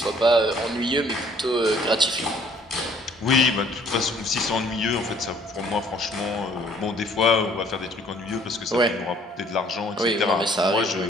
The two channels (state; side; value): normal; both; correlation 0.59